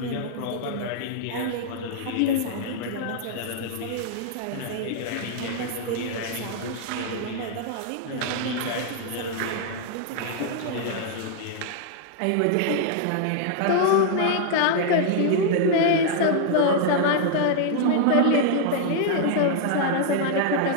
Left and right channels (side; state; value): both; different; correlation -0.01